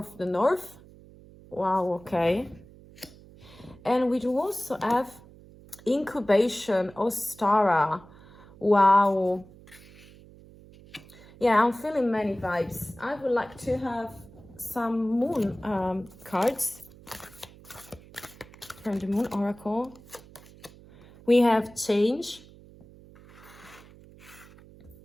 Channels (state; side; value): noise; right; hum, 22 dB below the sound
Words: Wow, okay. And we do also have incubation, Ostara. Wow. Yeah, I'm feeling many vibes. I would like to have some moon cards from the Moon Oracle. We have change.